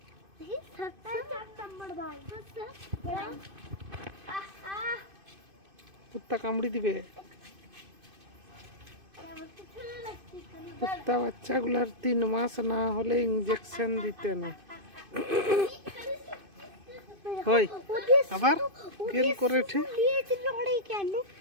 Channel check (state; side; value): late; left; 2.5 ms